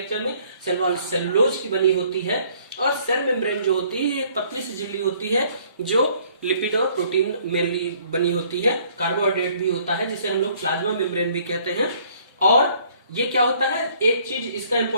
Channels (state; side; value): inverted; both; correlation -0.60